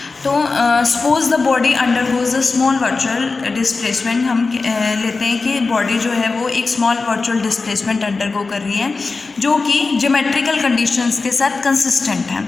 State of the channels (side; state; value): right; quieter; 4.0 dB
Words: तो suppose the body undergoes a small virtual displacement. हम लेते हैं कि बॉडी जो है वो एक स्मॉल वर्चुअल डिस्प्लेसमेंट अंडरगो कर रही है जो कि ज्योमेट्रिकल कंडीशंस के साथ कंसिस्टेंट है।